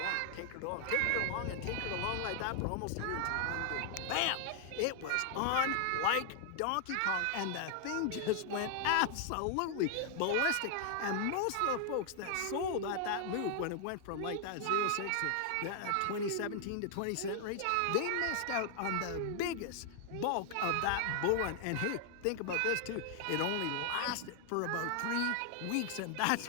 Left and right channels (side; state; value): both; different; correlation 0.00